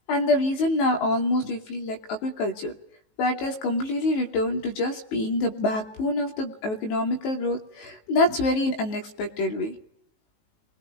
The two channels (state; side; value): late; right; 19 ms